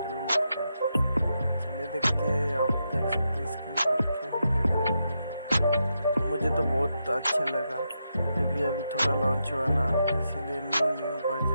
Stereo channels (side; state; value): both; inverted; correlation -0.84